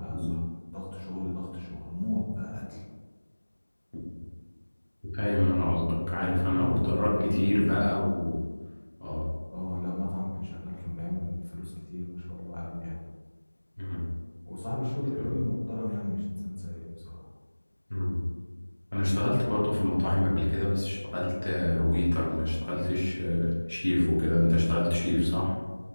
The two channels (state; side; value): inverted; both; correlation -1.00